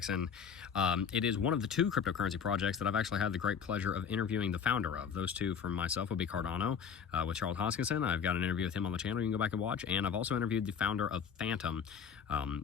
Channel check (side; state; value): right; quieter; 7.1 dB